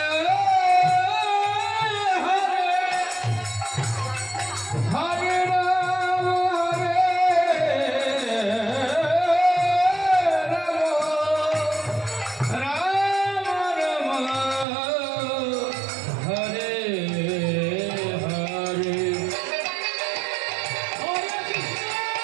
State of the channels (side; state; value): left; drops out; at 14.7 s